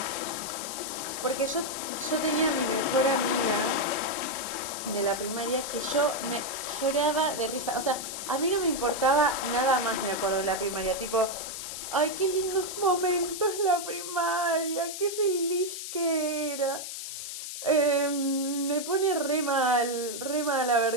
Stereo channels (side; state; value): left; noise; hiss, 7 dB below the sound